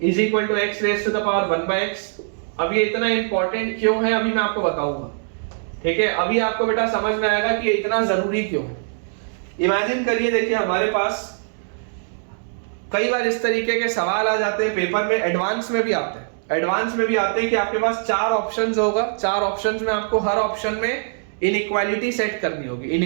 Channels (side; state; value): left; silent; digital silence